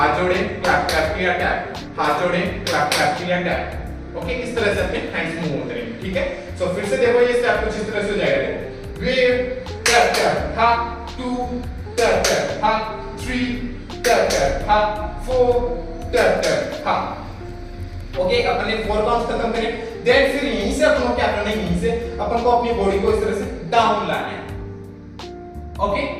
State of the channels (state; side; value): identical; both; correlation 1.00